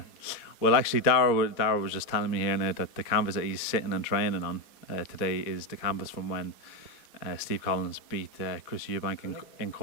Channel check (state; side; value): late; right; 4.0 ms